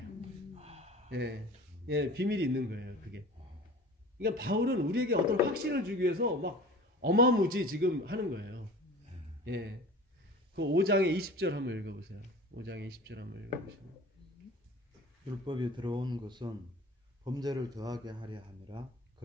비밀이 있는 거예요, 그게. 그러니까 바울은 우리에게 어떤 확신을 주기 위해서 막 어마무지 지금 하는 거예요. 예. 그 5장의 20절 한번 읽어보세요. 5장의 20절 한번 읽어보시면. 율법이 들어온 것은 범죄를 더하게 하려 함이라.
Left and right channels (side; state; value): both; normal; correlation 0.40